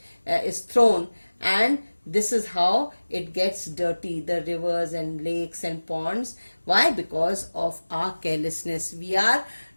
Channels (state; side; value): inverted; both; correlation -1.00